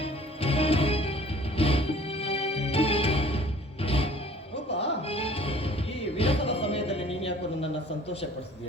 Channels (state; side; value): normal; both; correlation 0.51